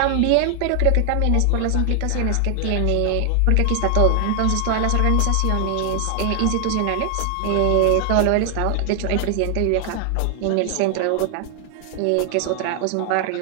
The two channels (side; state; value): both; different; correlation 0.00